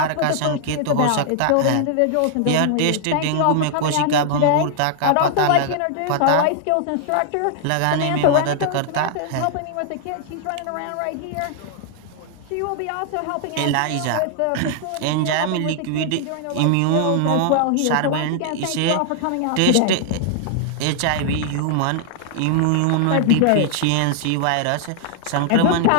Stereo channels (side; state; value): both; different; correlation 0.00